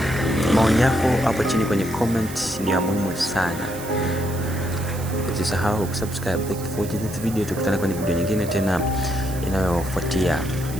maoni yako hapo chini kwenye comment ni ya muhimu sana. Usisahau kusubscribe. Thank you for watching this video. Tukutane kwenye video nyingine tena inayofuatia.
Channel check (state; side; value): noise; right; hiss, 14 dB below the sound